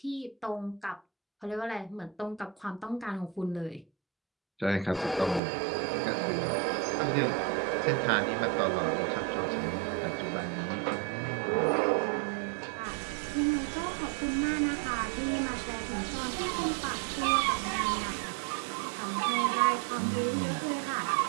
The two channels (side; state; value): left; drops out; at 5.4 s